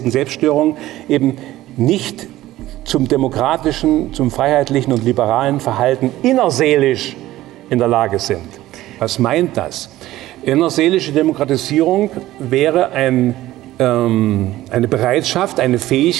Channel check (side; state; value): left; quieter; 15.6 dB